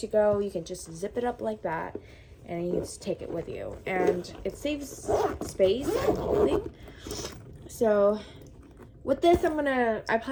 go, you can just zip it up like that and you just take it with you, and it saves space and holding. So with this, I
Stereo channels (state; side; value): identical; both; correlation 1.00